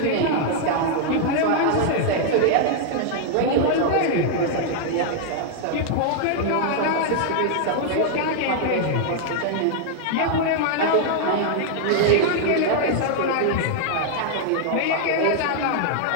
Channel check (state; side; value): different; both; correlation 0.00